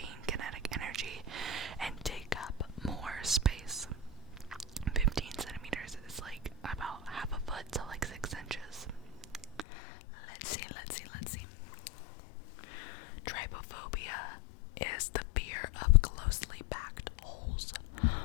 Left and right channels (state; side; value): drops out; right; at 9.7 s